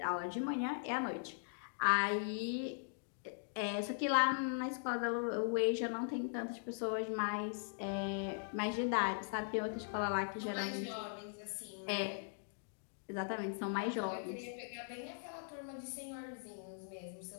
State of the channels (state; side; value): silent; right; digital silence